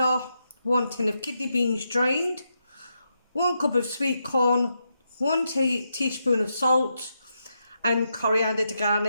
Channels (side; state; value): both; inverted; correlation -0.84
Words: 1 tin of kidney beans drained, 1 cup of sweet corn, 1 teaspoon of salt and coriander to